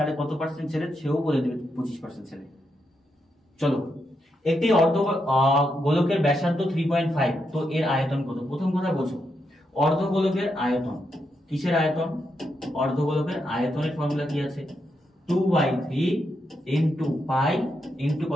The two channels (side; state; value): both; normal; correlation 0.82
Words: কত পার্সেন্ট ছেলে? সেও বলে দেবে 25% ছেলে। চলো, একটি অর্ধ গোলকের ব্যাসার্ধ 3.5, তো এর আয়তন কত? প্রথম কথা বোঝো, অর্ধগোলকের আয়তন। কিসের আয়তন? অর্ধগোলকের আয়তনের ফর্মুলা কি আছে? 2/3 ইনটু পাই ইনটু